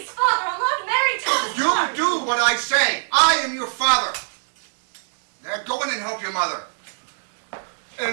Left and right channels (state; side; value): silent; left; digital silence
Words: Father, I'm not married to Thomas You Clark. do what I say. I am your father. Now go in and help your mother.